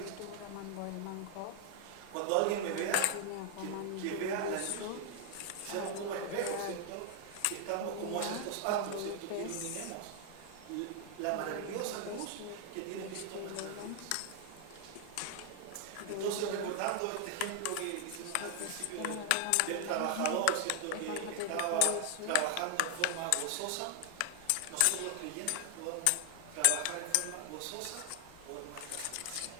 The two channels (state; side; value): different; both; correlation 0.00